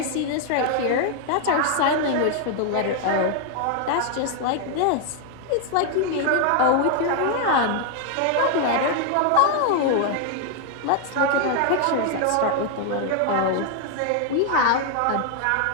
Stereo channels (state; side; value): different; both; correlation 0.00